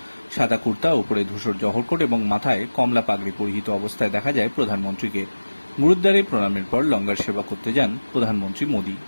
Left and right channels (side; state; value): both; inverted; correlation -1.00